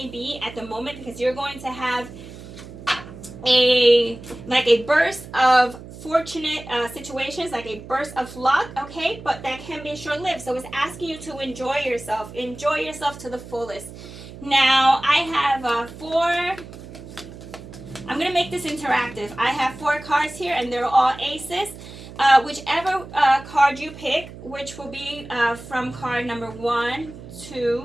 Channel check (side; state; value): right; noise; hum, 15 dB below the sound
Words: be at the moment, because you're going to have like a burst of fortunate situations, like a burst of luck, okay, but that can be short-lived. So it's asking you to enjoy yourself to the fullest. Now I have four. I'm gonna make this interactive. I have 4 cards here, and they're all aces. Whichever card you pick, which will be from card number 1,